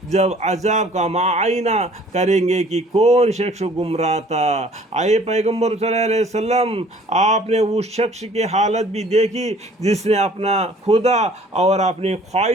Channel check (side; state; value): both; normal; correlation 0.54